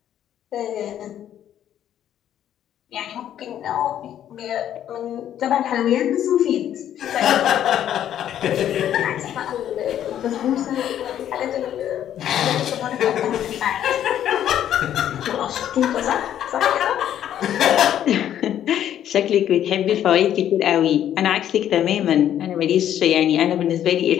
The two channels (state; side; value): quieter; right; 10.7 dB